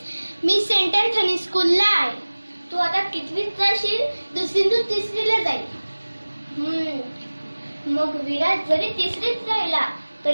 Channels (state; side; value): inverted; both; correlation -1.00